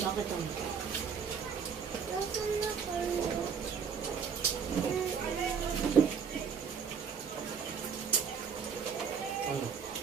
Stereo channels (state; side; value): quieter; left; 6.5 dB